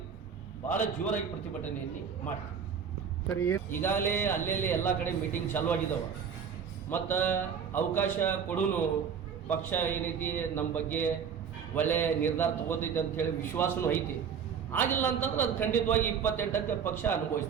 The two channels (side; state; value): left; quieter; 7.1 dB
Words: ಭಾಳ ಜೋರಾಗಿ ಪ್ರತಿಭಟನೆಯಲ್ಲಿ ಮಾಡ್ತೀವಿ. ಸರಿ, ಈಗಾಗಲೇ ಅಲ್ಲೆಲ್ಲಿ ಎಲ್ಲ ಕಡೆ ಮೀಟಿಂಗ್ ಚಾಲೂ ಆಗಿದ್ದಾವೆ ಮತ್ತು ಅವಕಾಶ ಕೊಡೂನು ಪಕ್ಷ ಏನೈತಿ ನಮ್ಮ ಬಗ್ಗೆ ಒಳ್ಳೆ ನಿರ್ಧಾರ ತಗೋತೈತೆ ಅಂತ ಹೇಳಿ ವಿಶ್ವಾಸನೂ ಐತಿ. ಆಗಿಲ್ಲ ಅಂತಂದ್ರೆ ಅದು ಖಂಡಿತವಾಗಿ 28ಕ್ಕೆ ಪಕ್ಷ